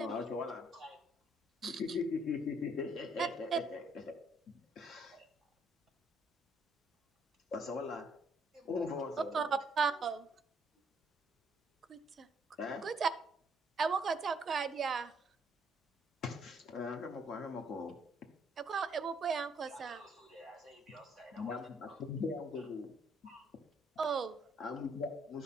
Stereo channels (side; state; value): both; normal; correlation 0.68